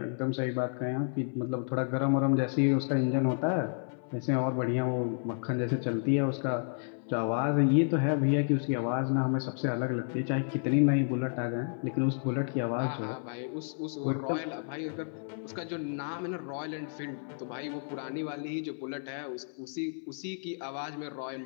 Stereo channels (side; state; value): right; silent; 57 dB below the other